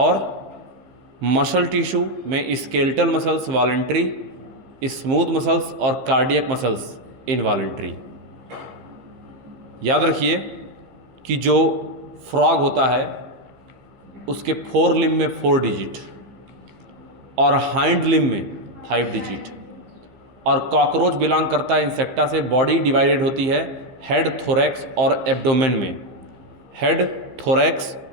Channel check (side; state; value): left; late; 15 ms